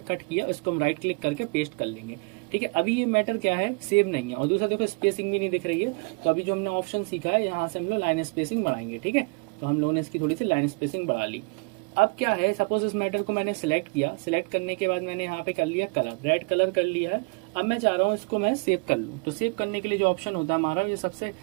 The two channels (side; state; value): left; quieter; 32.1 dB